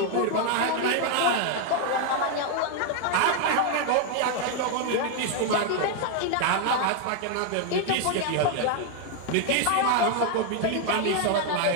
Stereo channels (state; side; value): different; both; correlation 0.00